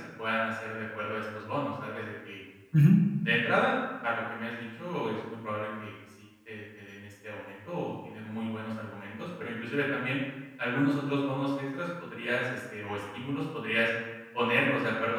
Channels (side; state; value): both; identical; correlation 1.00